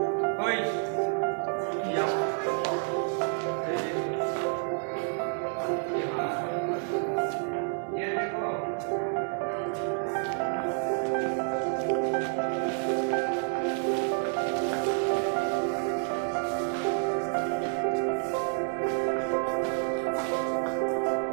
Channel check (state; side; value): silent; left; 57 dB below the other